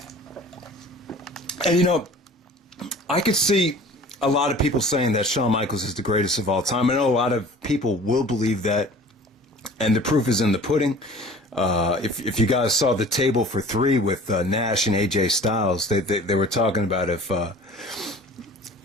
And I could see a lot of people saying that Shawn Michaels is the greatest of all time. I know a lot of people will believe that, and the proof is in the pudding. If you guys saw the table for three with Nash and AJ Styles, they were talking about if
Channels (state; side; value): normal; both; correlation 0.45